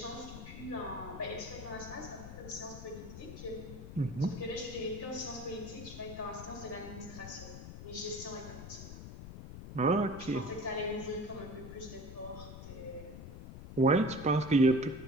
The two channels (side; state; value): left; noise; rumble, 11 dB below the sound